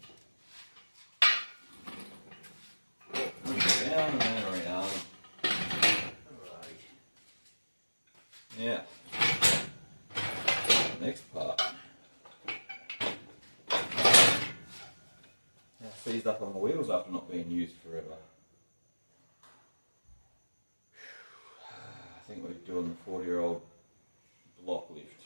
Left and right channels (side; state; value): both; inverted; correlation -1.00